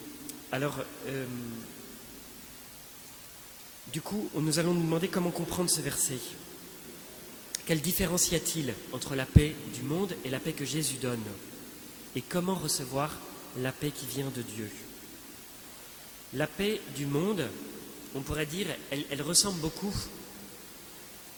du coup, nous allons nous demander comment comprendre ce verset. Quelle différence y a-t-il entre la paix du monde et la paix que Jésus donne? Et comment recevoir la paix qui vient de Dieu? La paix du monde, on pourrait dire, elle ressemble beaucoup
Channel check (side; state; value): both; identical; correlation 1.00